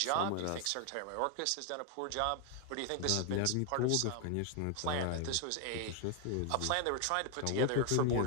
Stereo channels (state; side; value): different; both; correlation 0.00